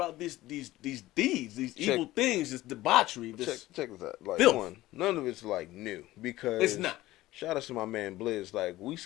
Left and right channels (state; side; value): quieter; right; 16.9 dB